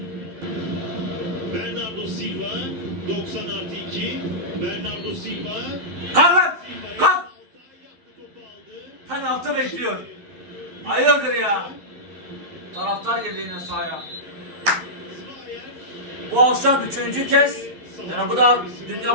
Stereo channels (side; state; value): left; late; 12 ms